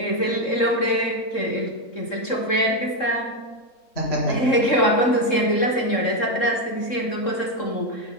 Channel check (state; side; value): late; right; 3.7 ms